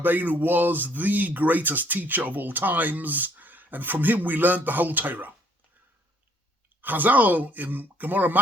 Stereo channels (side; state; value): both; normal; correlation 0.64